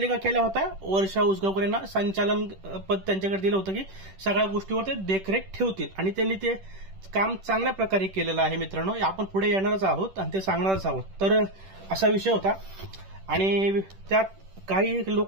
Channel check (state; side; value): late; left; 10 ms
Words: केल्या होत्या वर्षा उसगावकर यांना संचालन पद त्यांच्याकडे दिलं होतं की सगळ्या गोष्टीवर ते देखरेख ठेवतील आणि त्यांनी ते काम चांगल्या प्रकारे केलेलं आहे मित्रांनो. आपण पुढे येणारच आहोत आणि ते सांगणारच आहोत. तर असा विषय होता आणि त्यात काही